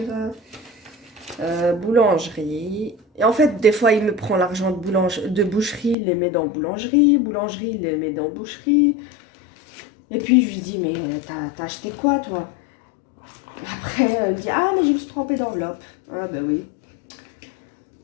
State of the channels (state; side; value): drops out; right; at 6.0 s